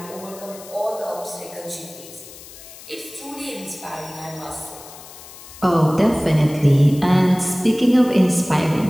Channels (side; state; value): left; noise; hiss, 17 dB below the sound